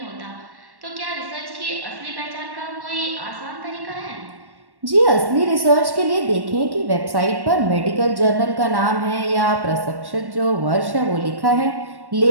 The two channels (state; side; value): late; left; 1.1 ms